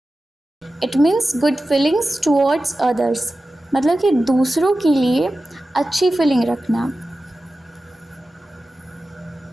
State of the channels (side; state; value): both; normal; correlation 0.94